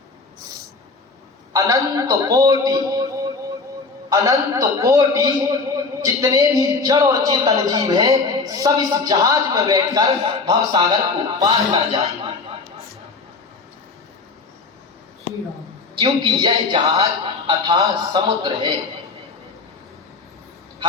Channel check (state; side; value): quieter; right; 4.1 dB